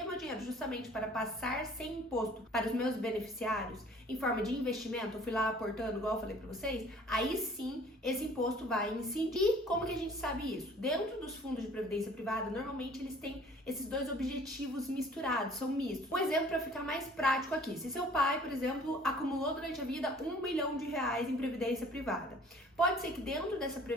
meu dinheiro justamente para passar sem imposto para os meus beneficiários, em forma de investimento, eu fui lá aportando, igual eu falei para vocês, aí sim esse imposto vai incidir. E como que a gente sabe isso? Dentro dos fundos de previdência privada, normalmente eles têm esses dois objetivos misturados, são mistos. Um exemplo para ficar mais prático aqui, se seu pai, por exemplo, acumulou durante a vida R$1 bilhão em previdência privada, pode ser que dentro dessa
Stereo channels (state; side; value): normal; both; correlation 0.52